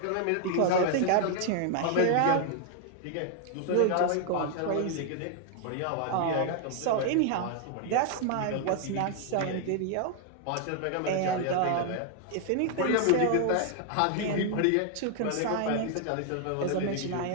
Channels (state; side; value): different; both; correlation 0.00